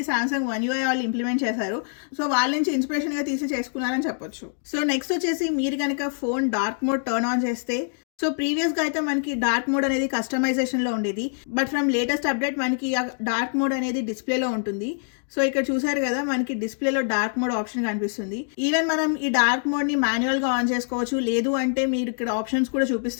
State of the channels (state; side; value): silent; right; digital silence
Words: సామ్సంగ్ One UI వాళ్ళు ఇంప్లిమెంట్ చేశారు. సో వాళ్ళ నుంచి ఇన్స్పిరేషన్గా తీసి చేసుకున్నారని చెప్పొచ్చు. సో నెక్స్ట్ వచ్చేసి మీరు కనుక phone dark mode turn on చేస్తే సో ప్రీవియస్గా అయితే మనకి డార్క్ మోడ్ అనేది కస్టమైజేషన్లో ఉండేది. బట్ ఫ్రమ్ లేటెస్ట్ అప్డేట్ మనకి ఆ డార్క్ మోడ్ అనేది డిస్ప్లేలో ఉంటుంది. సో ఇక్కడ చూసారు కదా మనకి డిస్ప్లేలో డార్క్ మోడ్ ఆప్షన్ కనిపిస్తుంది. ఈవెన్ మనం ఈ డార్క్ మోడ్ని మాన్యువల్గా ఆన్ చేసుకోవచ్చు. లేదు అంటే మీరు ఇక్కడ ఆప్షన్స్ కూడా